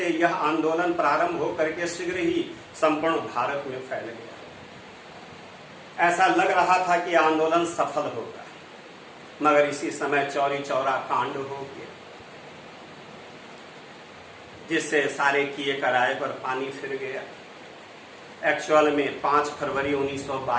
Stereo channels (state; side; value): identical; both; correlation 1.00